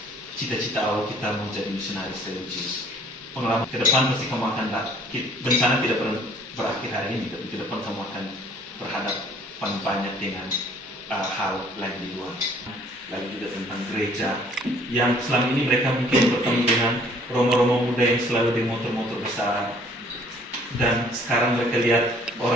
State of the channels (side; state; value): both; normal; correlation 0.57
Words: cita-cita awal kita menjadi misionaris religius. Pengalaman ke depan pasti kamu akan bencana tidak pernah berakhir hari ini, tapi ke depan kamu akan berhadapan banyak dengan hal lain di luar. Lalu juga tentang gereja yang selama ini mereka mungkin bertemu dengan romo-romo muda yang selalu di motor-motor besar, dan sekarang mereka lihat